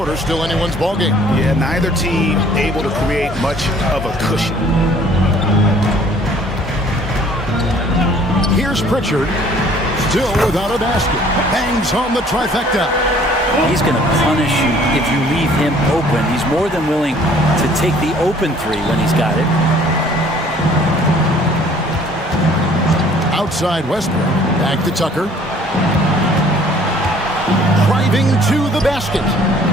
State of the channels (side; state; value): both; normal; correlation 0.56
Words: still anyone's ball game. Yeah, neither team able to create much of a cushion. Here's Pritchard, still without a basket. Bangs home the trifecta. He's going to punish you if you leave him open. He's more than willing to take the open 3 when he's got it. Outside Westbrook, back to Tucker. Driving to the basket.